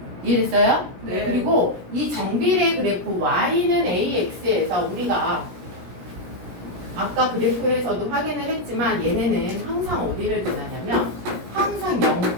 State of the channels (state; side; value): late; left; 17 ms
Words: 이해됐어요? 네. 그리고 이 정비례 그래프 y는 ax에서 우리가 아까 그래프에서도 확인을 했지만 얘네는 항상 어디를 지나냐면 항상